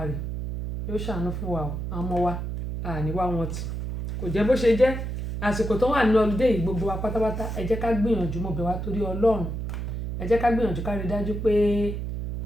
yóò ṣàánú fún wa àwọn ọmọ wa àníwá wọn tì kò jẹ́ bó ṣe jẹ́ àsìkò tó wà nínú ọlùdé yìí gbogbo wa pátápátá ẹ jẹ́ ká gbìyànjú mo bẹ̀ wá torí Ọlọ́run ẹ jẹ́ ká gbìyànjú ká rí dájú pé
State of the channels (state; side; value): noise; right; hum, 4 dB below the sound